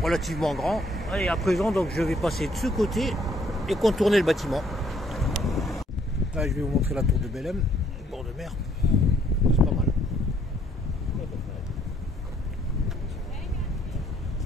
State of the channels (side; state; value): both; normal; correlation 0.66